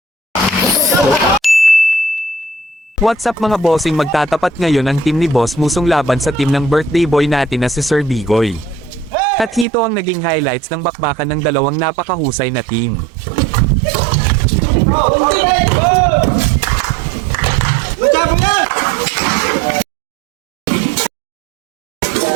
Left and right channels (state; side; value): drops out; left; at 9.7 s